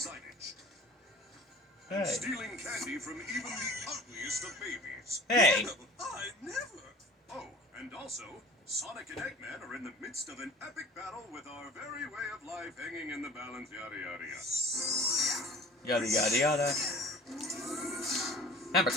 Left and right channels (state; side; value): normal; both; correlation 0.44